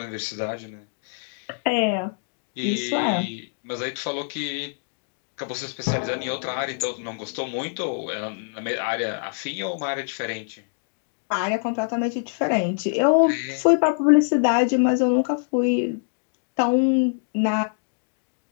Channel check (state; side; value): silent; right; digital silence